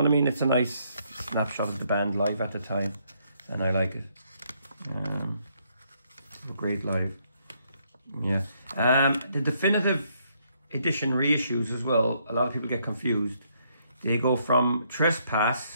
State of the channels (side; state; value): both; inverted; correlation -0.72